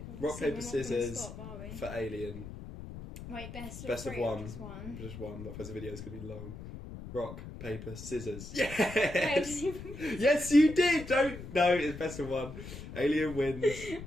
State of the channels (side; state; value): left; noise; rumble, 11 dB below the sound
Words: Rock, paper, scissors for Alien. Wait, best of one. Just one. Otherwise the video's going to be long. Rock, paper, scissors. Yes! Yes, you did! No, it's best of one. Alien wins.